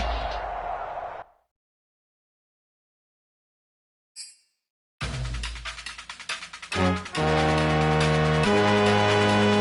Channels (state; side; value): identical; both; correlation 1.00